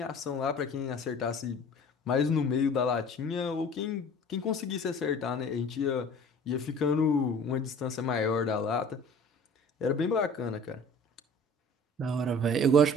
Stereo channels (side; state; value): both; normal; correlation 0.46